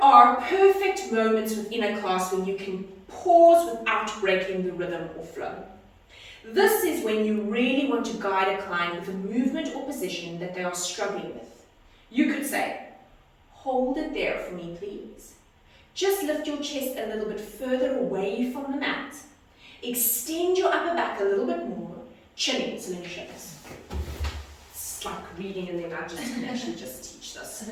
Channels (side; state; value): both; identical; correlation 1.00